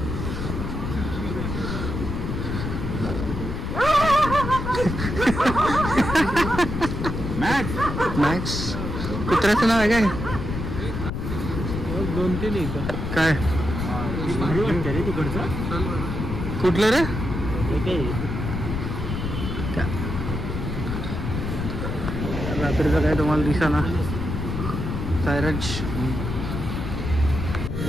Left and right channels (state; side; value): noise; left; rumble, 4 dB below the sound